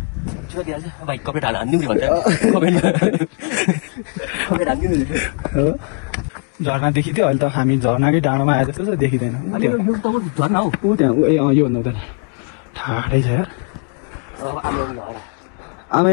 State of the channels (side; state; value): right; quieter; 38.7 dB